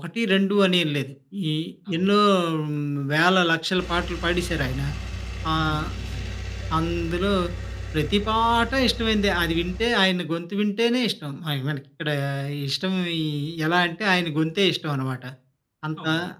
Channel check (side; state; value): both; identical; correlation 1.00